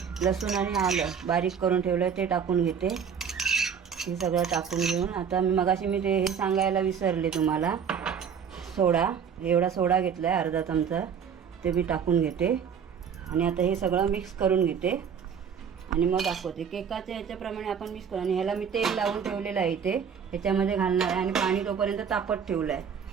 लसूण आणि आलं बारीक करून ठेवलं ते टाकून घेते. हे सगळं टाकून घेऊन आता मगाशी ते हे सांगायला विसरले तुम्हाला. सोडा, एवढा सोडा घेतला आहे अर्धा चमचा, ते मी टाकून घेते. आणि आता हे सगळं मिक्स करून घेते आणि मग दाखवते. केकाच्या ह्याच्याप्रमाणे आपण मिक्स करू. आणि ह्याला मी तेल लावून ठेवलेलं आहे इथे, ह्याच्यामध्ये घालणार आहे. आणि पाणी तोपर्यंत तापत ठेवलं आहे.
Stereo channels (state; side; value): quieter; left; 7.2 dB